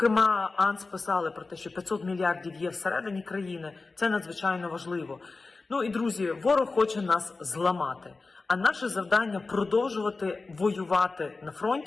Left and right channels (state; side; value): quieter; right; 3.8 dB